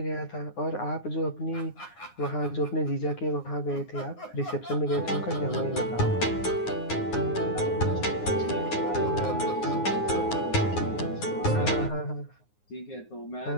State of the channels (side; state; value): right; late; 9.6 ms